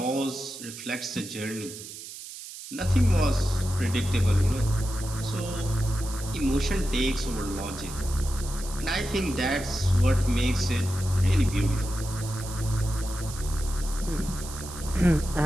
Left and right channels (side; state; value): right; noise; hiss, 12 dB below the sound